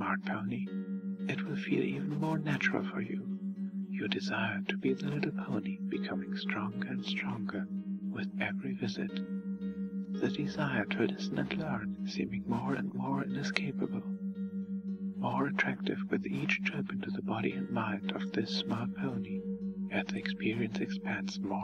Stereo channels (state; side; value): identical; both; correlation 1.00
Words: pony, it will feel even more natural for you. Your desire to be the little pony becoming stronger and stronger with every visit. The desire to listen and learn seeming more and more inescapable. More attractive with each trip into the body and mind of this smart pony, as the experience expands